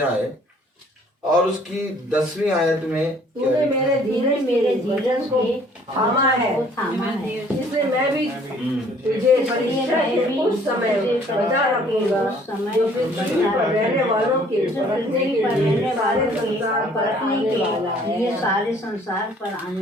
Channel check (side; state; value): both; normal; correlation 0.58